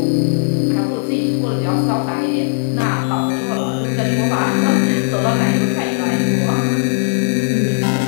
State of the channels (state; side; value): silent; right; digital silence